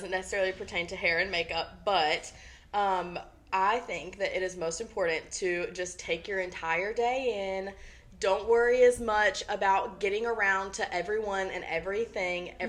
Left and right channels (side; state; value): both; identical; correlation 1.00